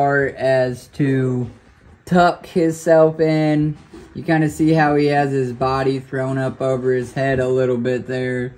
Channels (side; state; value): both; identical; correlation 1.00